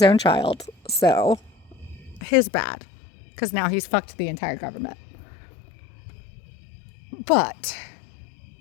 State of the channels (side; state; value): right; drops out; at 2.2 s